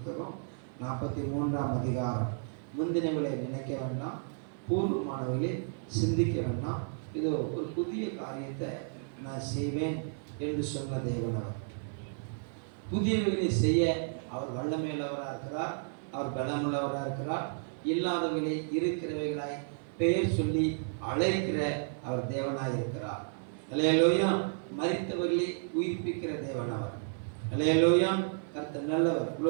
43ஆம் அதிகாரம். முந்தினவர்களை நினைக்க வேண்டாம், பூர்வமானவர்களை சிந்திக்க வேண்டாம். இதோ ஒரு புதிய காரியத்தை நான் செய்வேன் என்று சொன்ன தேவனவர். புதியவர்களை செய்ய அவர் வல்லமையுள்ளவராக இருக்கிறார், அவர் பலமுள்ளவராக இருக்கிறார். இல்லாதவர்களை இருக்கிறவைகளாய் பெயர் சொல்லி அழைக்கிற அவர் தேவனாய் இருக்கிறார். அல்லேலூயா. மரித்தவர்களை உயிர்ப்பிக்கிற தேவன் அவர். அல்லேலூயா. கர்த்தர் நல்லவர்.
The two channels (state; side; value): silent; left; 55 dB below the other